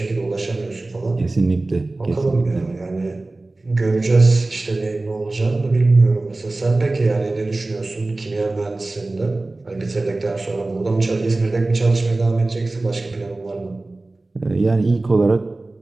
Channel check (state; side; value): quieter; left; 3.0 dB